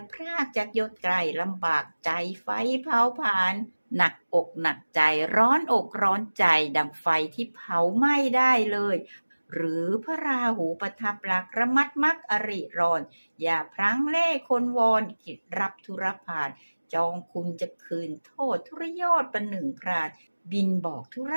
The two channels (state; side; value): inverted; both; correlation -1.00